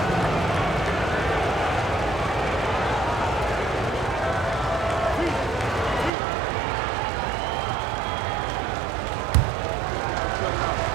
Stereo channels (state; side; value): drops out; left; at 6.1 s